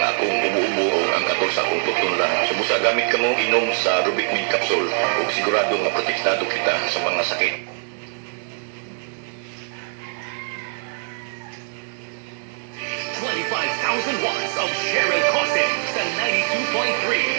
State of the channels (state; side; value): silent; left; 64 dB below the other